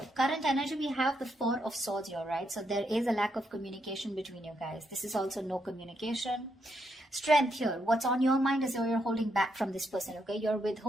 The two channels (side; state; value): both; normal; correlation 0.79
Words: current energy, we have the Four of Swords here, right? So there is a lack of communication between you guys. This is also no communication. Strength here. What's on your mind is you're holding back from this person, okay? You're